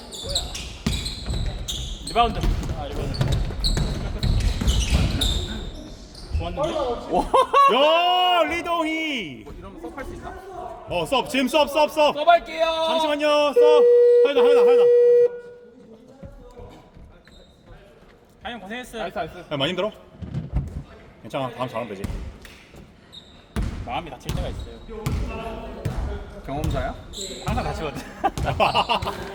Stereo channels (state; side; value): identical; both; correlation 1.00